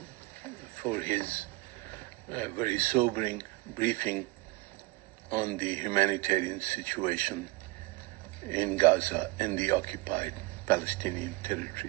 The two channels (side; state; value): left; quieter; 22.8 dB